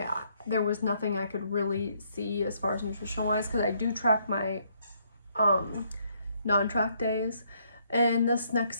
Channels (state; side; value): inverted; both; correlation -0.70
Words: There was nothing I could really see as far as nutritional wise, because I do track my non-track days. And this next